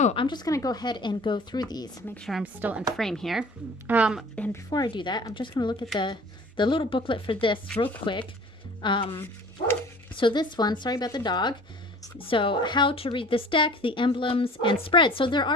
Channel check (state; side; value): normal; both; correlation 0.46